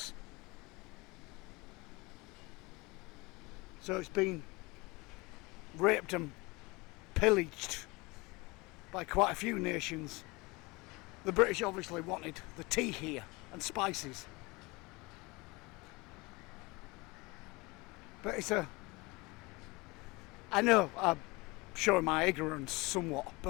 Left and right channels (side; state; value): right; quieter; 24.5 dB